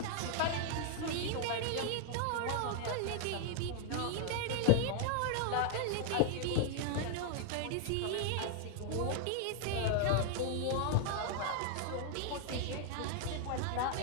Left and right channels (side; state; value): both; different; correlation -0.01